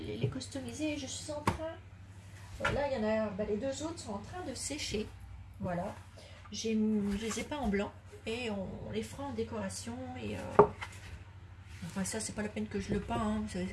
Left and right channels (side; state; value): both; identical; correlation 1.00